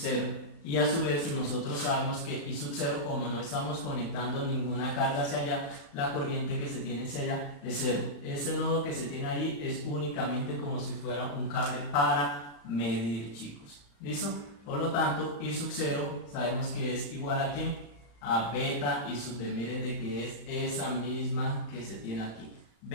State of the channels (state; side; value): late; right; 35 ms